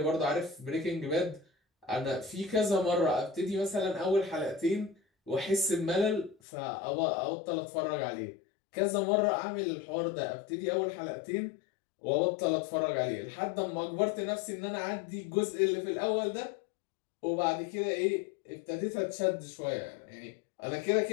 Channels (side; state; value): right; drops out; at 6.4 s